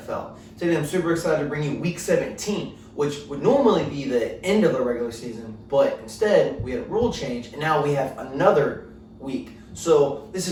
Today I'm super excited to bring you Week 17, which would normally be the end of the regular season, but instead we had a rule change and now we have another week. So this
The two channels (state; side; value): identical; both; correlation 1.00